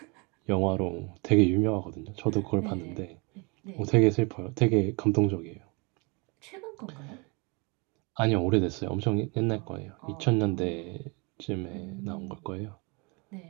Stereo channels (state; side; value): quieter; left; 30.0 dB